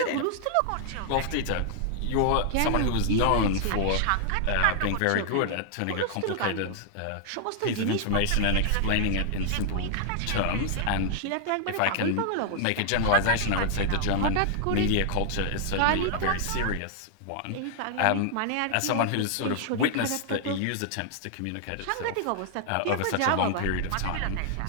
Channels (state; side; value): different; both; correlation -0.01